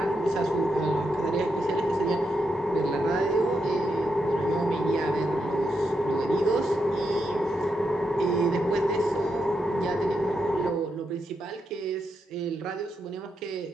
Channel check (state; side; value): normal; both; correlation 0.83